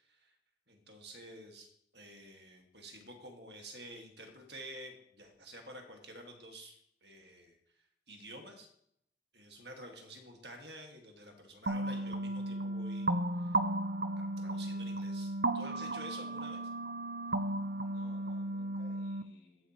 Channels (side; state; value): both; normal; correlation 0.11